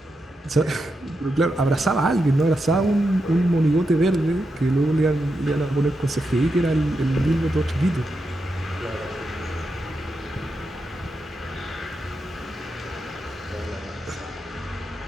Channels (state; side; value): normal; both; correlation 0.86